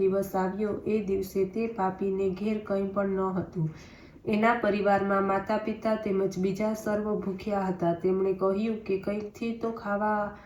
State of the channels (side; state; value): both; identical; correlation 1.00